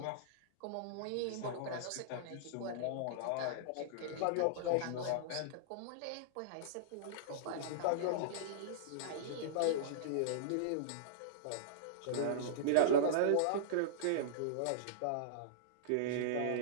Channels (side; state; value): both; different; correlation -0.03